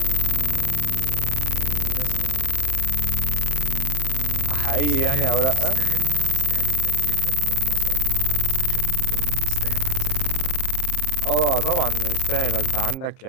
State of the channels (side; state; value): right; late; 29 ms